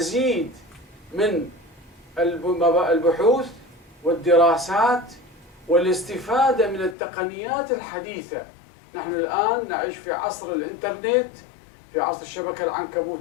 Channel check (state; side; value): drops out; right; at 7.0 s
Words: من البحوث والدراسات والاستفادة من التقنيات الحديثة. نحن الآن نعيش في عصر الإنترنت، في عصر الشبكة